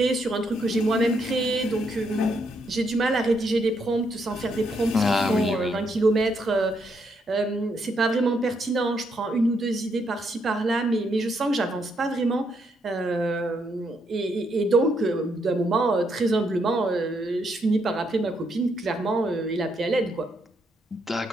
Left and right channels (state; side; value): normal; both; correlation 0.76